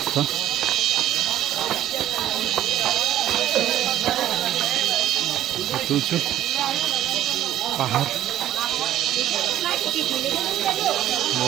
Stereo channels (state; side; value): quieter; left; 12.4 dB